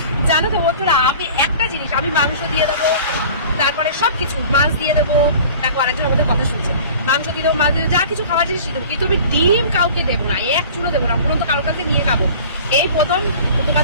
জানো তো বন্ধুরা, আমি একটা জিনিস, আমি মাংস দিয়ে দেবো, তারপরে সবকিছু, মাছ দিয়ে দেবো। দেখো আরেকজন আমাদের কথা শুনছে, মাংস দিয়ে দেবো, মাছ দিয়ে দেবো, যা কিছু খাবার জিনিস দিয়ে দেবো, কিন্তু আমি ডিম কাউকে দেবো না, এক চুলো দেবো না। পুরো তো কারোর কাছে নিয়ে খাবো। এই প্রথম তোমার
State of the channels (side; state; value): both; inverted; correlation -0.43